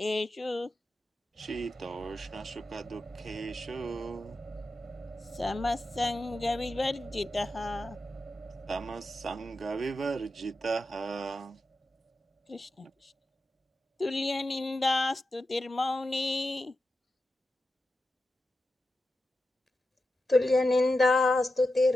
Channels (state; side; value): normal; both; correlation 0.90